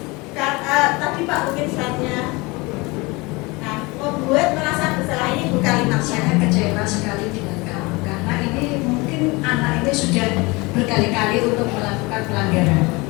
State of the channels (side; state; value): right; quieter; 24.9 dB